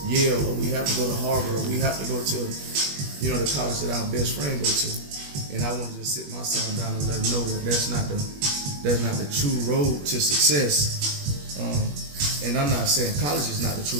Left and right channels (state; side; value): late; left; 21 ms